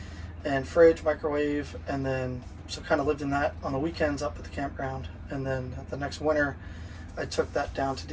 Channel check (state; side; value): identical; both; correlation 1.00